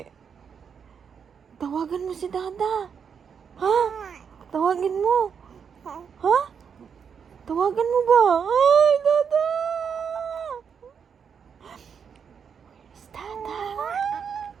Tawagan mo si Dada. Ha? Tawagin mo. Ha? Tawagan mo ba? Ay, Dada!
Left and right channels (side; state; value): left; quieter; 6.9 dB